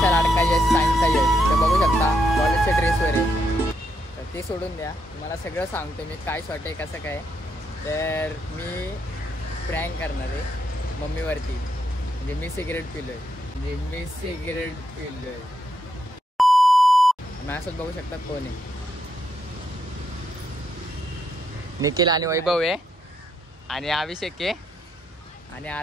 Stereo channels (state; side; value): normal; both; correlation 0.79